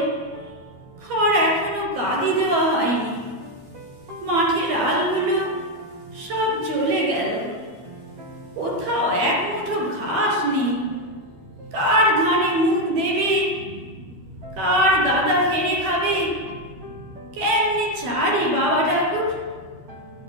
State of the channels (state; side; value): late; left; 12 ms